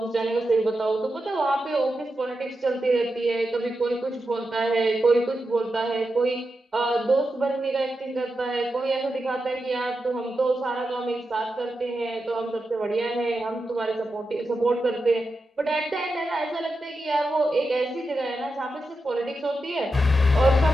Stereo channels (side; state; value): both; normal; correlation 0.89